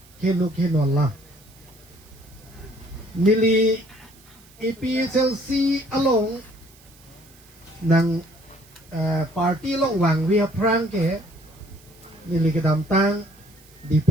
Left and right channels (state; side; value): noise; right; hiss, 26 dB below the sound